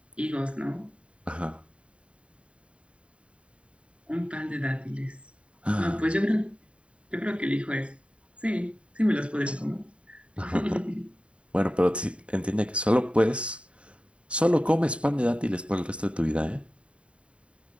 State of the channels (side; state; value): left; late; 0.060 ms